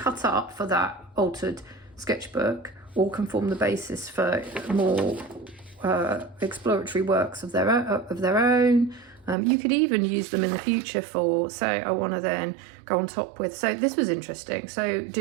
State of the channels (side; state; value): left; drops out; at 9.3 s